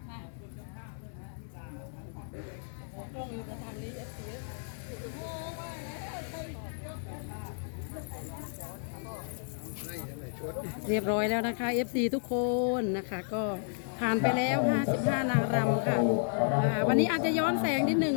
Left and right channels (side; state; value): right; silent; 56 dB below the other